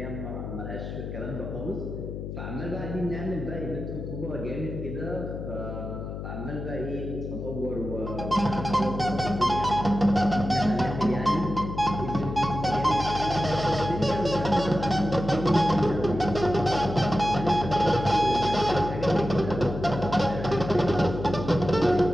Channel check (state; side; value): noise; left; hum, 7 dB below the sound